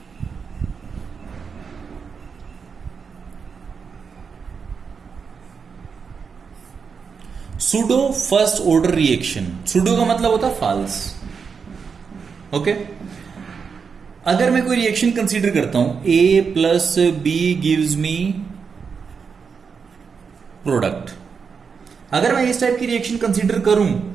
pseudo first order reaction. Pseudo का मतलब होता है फॉल्स। ओके, अगर मैं कोई रिएक्शन कंसीडर करता हूं A plus B gives me product, अगर मैं इस टाइप की रिएक्शन कंसीडर करूं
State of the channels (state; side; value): quieter; left; 5.8 dB